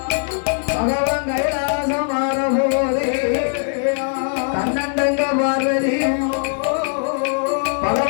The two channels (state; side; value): silent; right; digital silence